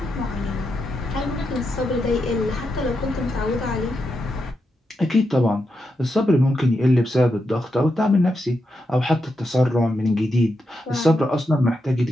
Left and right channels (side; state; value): both; normal; correlation 0.85